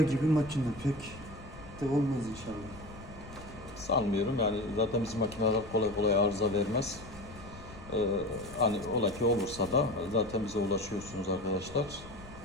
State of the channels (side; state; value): left; noise; rumble, 16 dB below the sound